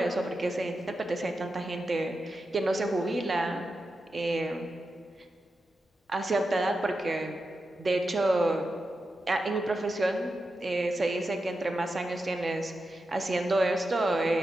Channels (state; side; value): normal; both; correlation 0.89